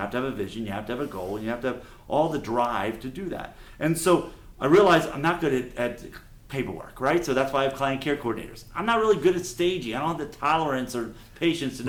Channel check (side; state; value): both; identical; correlation 1.00